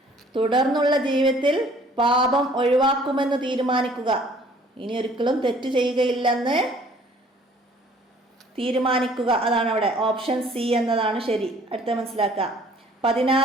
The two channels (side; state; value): both; normal; correlation 0.56